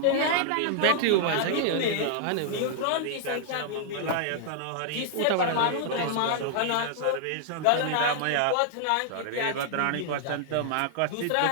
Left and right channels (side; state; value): both; different; correlation -0.01